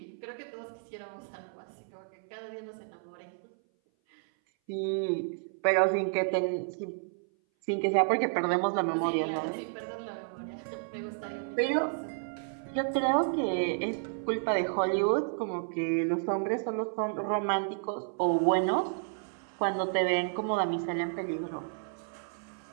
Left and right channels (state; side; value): silent; left; 57 dB below the other